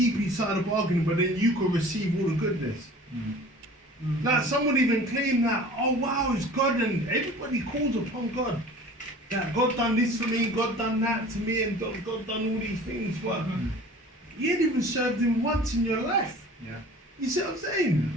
each side of the bargain, but then you can receive all the goodness. Like someone even claimed that, oh wow, it's God, and everybody calls upon God. That God done this for me, God done that to me, and God done all these things. But you ain't even served Him once in your life. Yeah. You see what I'm saying?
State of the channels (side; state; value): both; normal; correlation 0.44